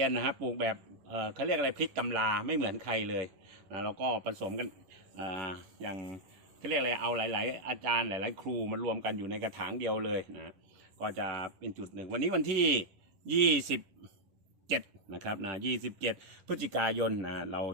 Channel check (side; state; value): left; late; 11 ms